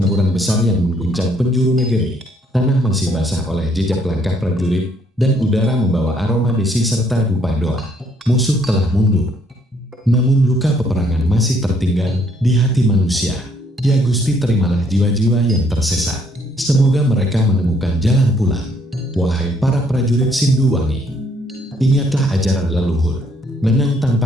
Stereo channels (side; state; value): both; normal; correlation 0.67